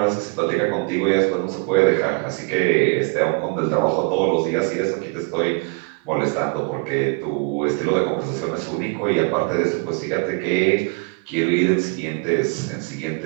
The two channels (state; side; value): quieter; left; 33.7 dB